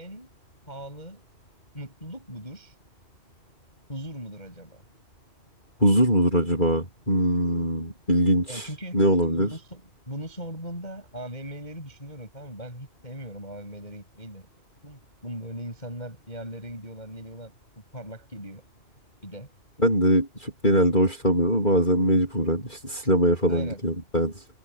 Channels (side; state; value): right; late; 2.4 ms